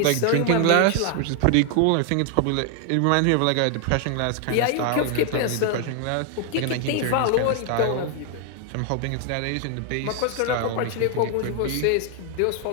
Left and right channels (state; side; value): different; both; correlation 0.00